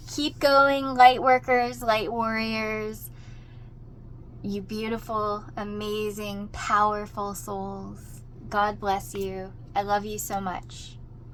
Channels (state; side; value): identical; both; correlation 1.00